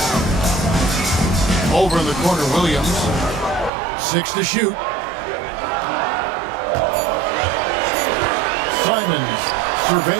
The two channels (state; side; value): drops out; left; at 3.7 s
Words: Over in the corner, Williams. 6 to shoot. Simons